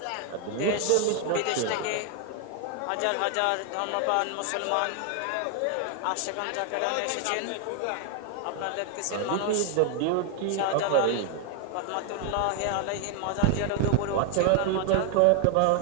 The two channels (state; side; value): different; both; correlation 0.00